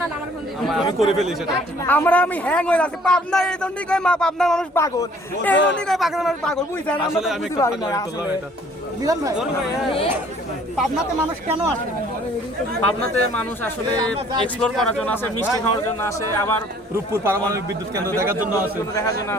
আমি করে ফেলি সেটা। আমি হ্যাং হয়ে যাচ্ছি। পাবনা এই জন্যই কয় পাবনার মানুষ পাগল, এই জন্যই কয় পাবনার মানুষ পাগল, বুঝছেন? আসলে আমি একটা পাগলামি করলাম এটা। মিলন ভাই, পাবনাতে মানুষ কেন আসে? পাবনাতে মানুষ আসলে এক্সপ্লোর করার জন্য আসে, মিষ্টি খাওয়ার জন্য আসে, আবার রূপপুর পারমাণবিক বিদ্যুৎ কেন্দ্র দেখার জন্য আসে, দেখার জন্য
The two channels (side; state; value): both; normal; correlation 0.57